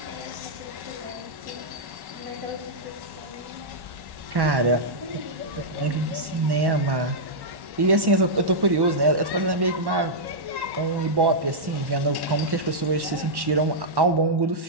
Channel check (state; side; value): late; left; 1.1 ms